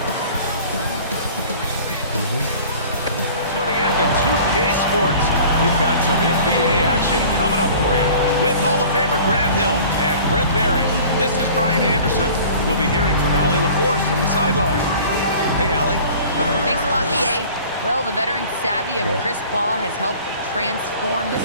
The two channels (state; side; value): inverted; both; correlation -0.45